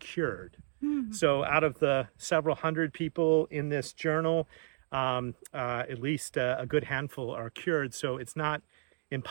So out of the several hundred people in this journal, at least a good handful are cured. So it's not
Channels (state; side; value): silent; left; digital silence